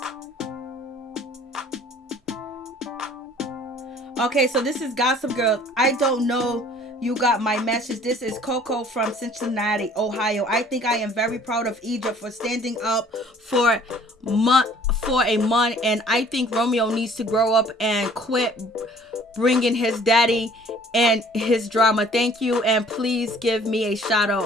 Okay, so this is Gossip Girl. I don't know you got my message. This is Coco from Cincinnati, Ohio. I think I am very proud of Egypt for standing up for a month, and I think Romeo needs to grow up and quit bringing his daddy and his drama. Thank you, and please give me a shout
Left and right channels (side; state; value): both; normal; correlation 0.54